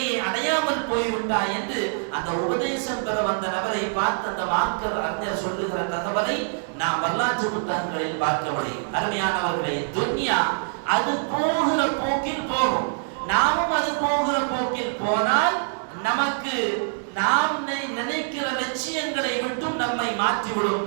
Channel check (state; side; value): silent; left; digital silence